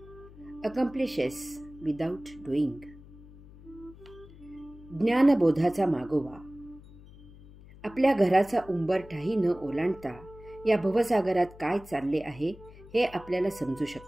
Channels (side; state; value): left; noise; hum, 20 dB below the sound